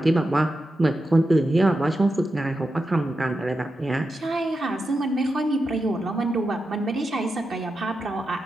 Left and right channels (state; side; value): normal; both; correlation 0.89